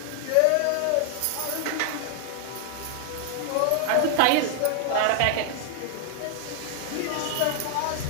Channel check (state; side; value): different; both; correlation 0.00